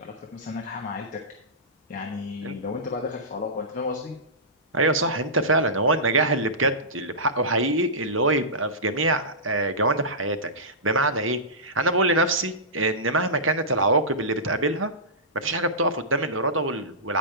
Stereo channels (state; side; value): normal; both; correlation -0.19